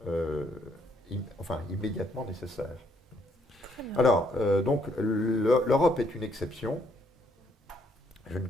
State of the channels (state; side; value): normal; both; correlation 0.69